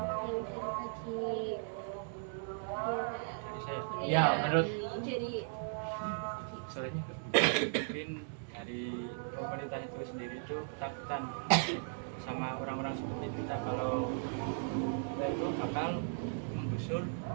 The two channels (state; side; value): silent; left; digital silence